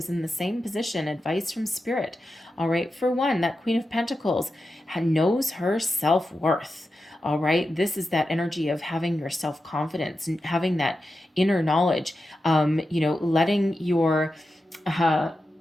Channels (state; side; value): normal; both; correlation 0.90